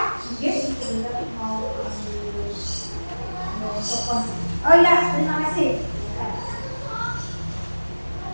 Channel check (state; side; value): inverted; both; correlation -1.00